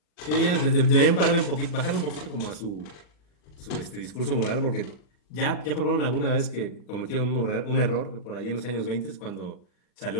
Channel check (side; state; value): right; late; 40 ms